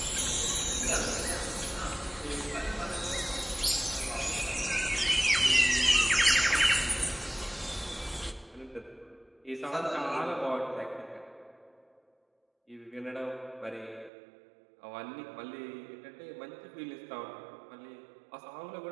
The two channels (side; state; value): left; drops out; at 14.1 s